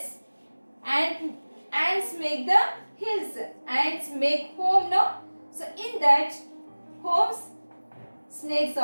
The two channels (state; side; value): inverted; both; correlation -1.00